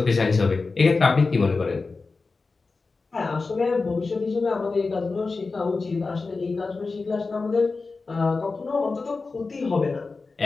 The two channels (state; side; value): quieter; right; 4.0 dB